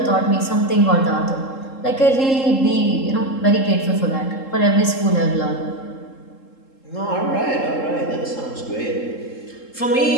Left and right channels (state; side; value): late; right; 3.7 ms